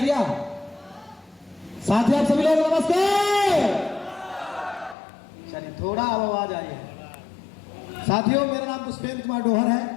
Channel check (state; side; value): drops out; right; at 5.0 s